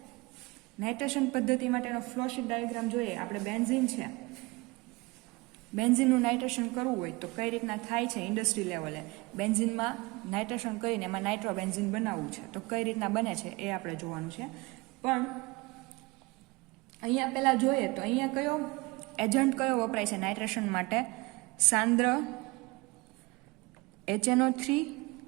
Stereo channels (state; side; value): quieter; left; 24.5 dB